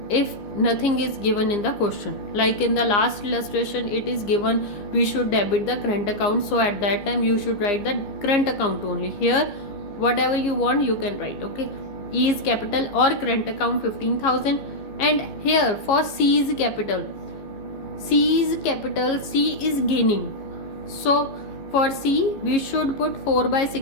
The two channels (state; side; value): late; right; 15 ms